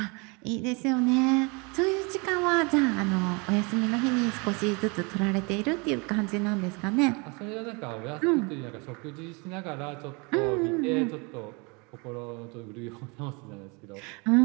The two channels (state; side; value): quieter; left; 30.1 dB